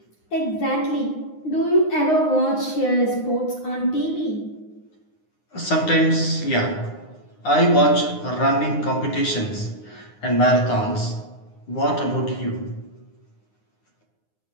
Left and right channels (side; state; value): right; late; 9.7 ms